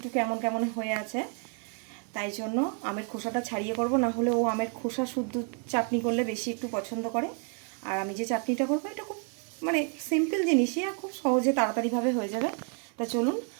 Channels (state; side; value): quieter; left; 39.9 dB